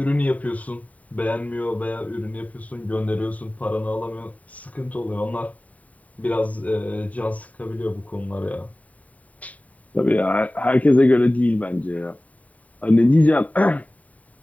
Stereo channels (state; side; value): late; right; 0.070 ms